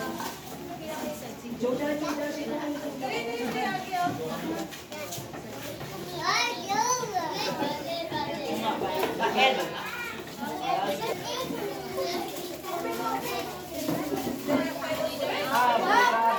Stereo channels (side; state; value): both; identical; correlation 1.00